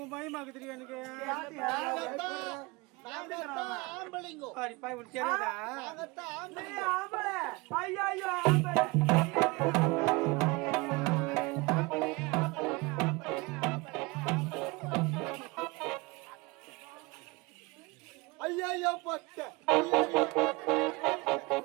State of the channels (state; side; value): quieter; left; 25.1 dB